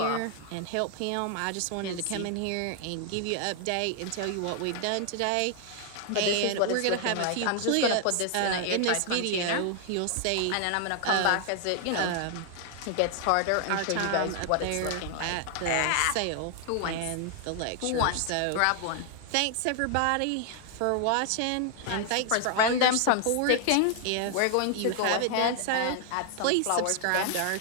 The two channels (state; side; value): different; both; correlation 0.00